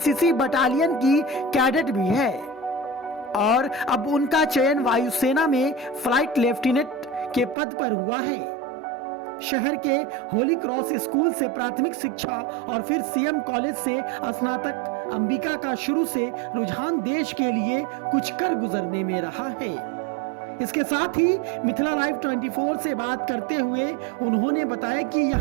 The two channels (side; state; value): left; drops out; at 7.6 s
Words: बटालियन की कैडेट भी है और अब उनका चयन वायुसेना में फ्लाइट लेफ्टिनेंट के पद पर हुआ है। शहर के होली क्रॉस स्कूल से प्राथमिक शिक्षा और फिर सीएम कॉलेज से स्नातक अंबिका का शुरू से रुझान देश के लिए कुछ कर गुजरने में रहा है। इसके साथ ही मिथिला लाइव 24 से बात करते हुए उन्होंने बताया कि